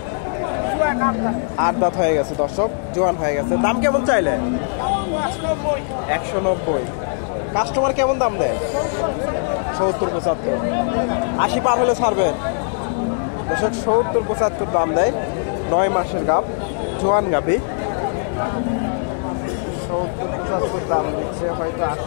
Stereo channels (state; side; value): silent; right; 57 dB below the other